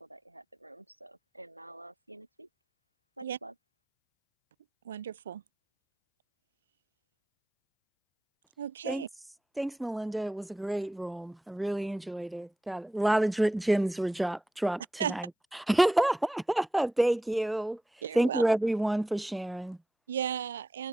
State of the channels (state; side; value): normal; both; correlation 0.89